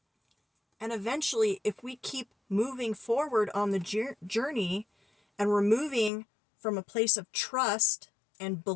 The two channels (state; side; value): drops out; right; at 6.1 s